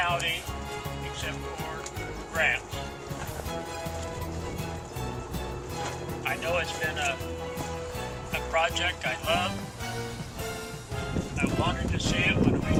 except for grants. I know it's been a project I love. I wanted to see it when we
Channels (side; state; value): both; identical; correlation 1.00